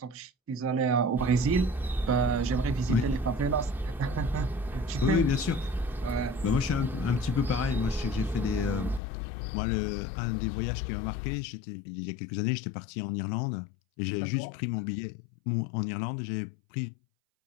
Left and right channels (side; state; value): right; drops out; at 9.0 s